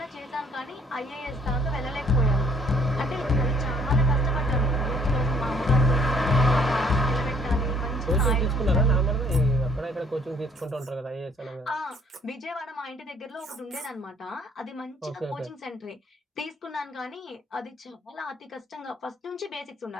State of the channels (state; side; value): normal; both; correlation 0.62